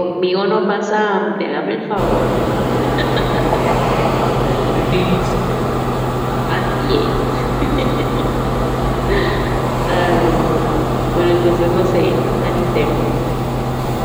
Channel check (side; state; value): both; identical; correlation 1.00